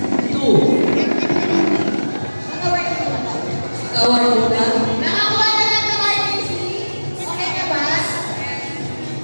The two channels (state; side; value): inverted; both; correlation -1.00